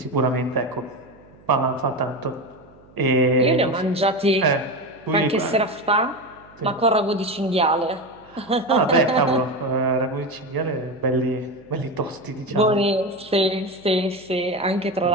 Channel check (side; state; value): right; noise; hum, 26 dB below the sound